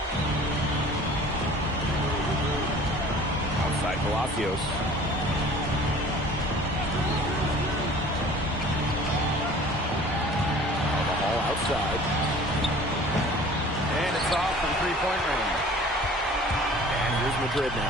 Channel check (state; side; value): normal; both; correlation 0.47